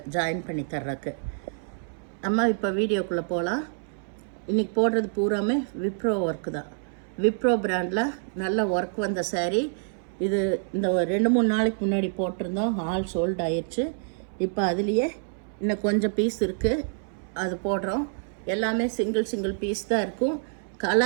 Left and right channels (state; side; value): silent; left; 60 dB below the other